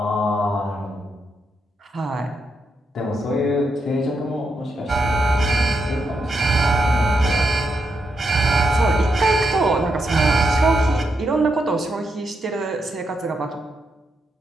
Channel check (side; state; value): both; normal; correlation 0.82